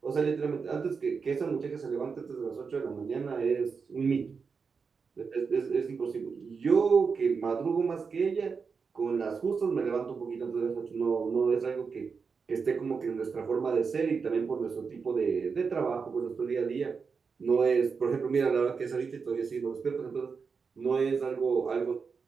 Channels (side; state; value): left; quieter; 5.4 dB